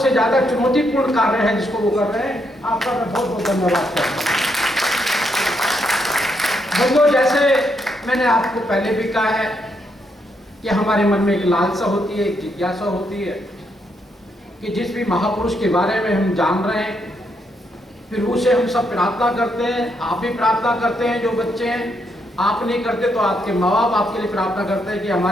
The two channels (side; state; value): both; normal; correlation 0.77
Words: ज़्यादा चुनौतीपूर्ण कार्य है जिसको वो कर रहे हैं। आपका मैं बहुत बहुत धन्यवाद करता हूँ। बंधुओं, जैसे मैंने आपको पहले भी कहा है कि हमारे मन में एक लालसा होती है, एक जिज्ञासा होती है कि जिस भी महापुरुष के बारे में हम जान रहे हैं, फिर उसे हम सब प्रार्थना करते हैं। आप भी प्रार्थना करते हैं, जो बच्चे हैं। आप नहीं करते तो आपके माँ बाप आपके लिए प्रार्थना करते हैं कि